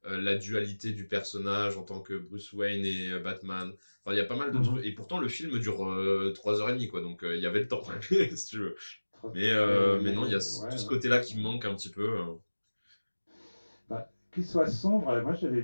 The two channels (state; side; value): inverted; both; correlation -1.00